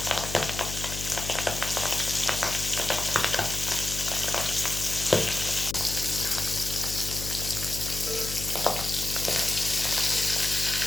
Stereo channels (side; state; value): left; noise; hum, 8 dB below the sound